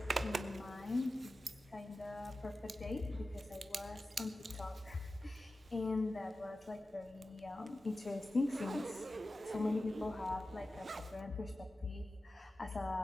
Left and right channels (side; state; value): both; normal; correlation 0.94